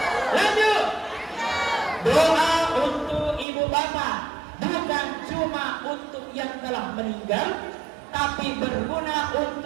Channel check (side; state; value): left; drops out; at 3.5 s